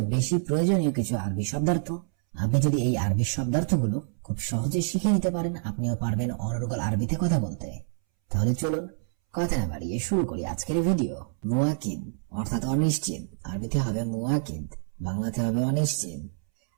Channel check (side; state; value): left; silent; 60 dB below the other